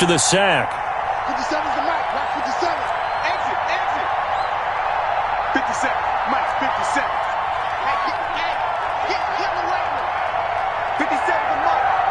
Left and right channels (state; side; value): identical; both; correlation 1.00